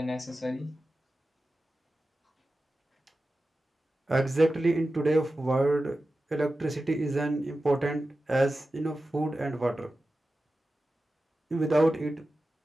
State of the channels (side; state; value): both; normal; correlation 0.94